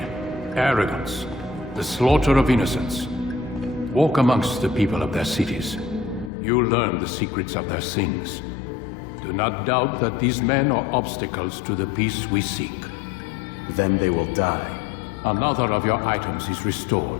arrogance, the slaughter of innocents. Walk amongst the people of their cities. You'll learn the secrets of their sins. Do not doubt that these men are obstacles to the peace we seek. Then they will die. Another of your items is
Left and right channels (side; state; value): right; drops out; at 6.3 s